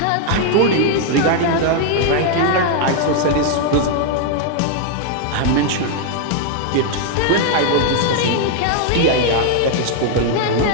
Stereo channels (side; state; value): both; different; correlation 0.00